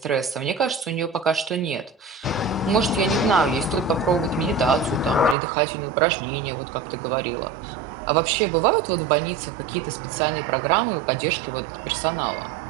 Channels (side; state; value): left; drops out; at 5.4 s